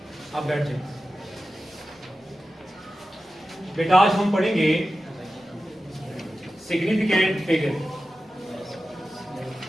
आप बैठ जाए बेटा। आज हम पढ़ेंगे सिग्निफिकेंट फिगर।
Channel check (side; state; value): both; normal; correlation 0.93